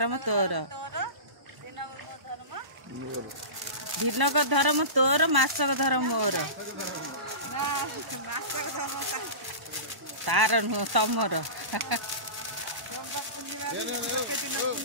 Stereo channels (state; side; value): late; left; 1.0 ms